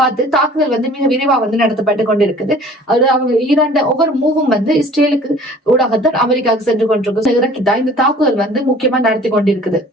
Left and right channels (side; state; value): both; normal; correlation 0.49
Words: தாக்குதல் வந்து மிக விரைவா வந்து நடத்தப்பட்டு கொண்டிருக்குது. அது அவங்க ஈரான் ஒவ்வொரு மூவும் வந்து இஸ்ரேலுக்கு ஊடாகத்தான் அமெரிக்காவுக்கு சென்று கொண்டிருக்கு. இறக்கிதான் இந்த தாக்குதல் வந்து முக்கியமா நடத்தி கொண்டிருக்குது.